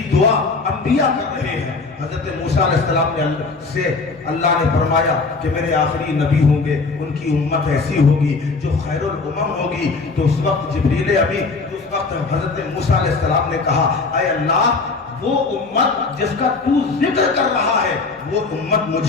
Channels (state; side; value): quieter; right; 4.1 dB